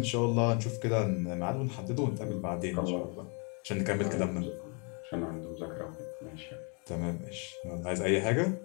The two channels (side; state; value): right; quieter; 35.5 dB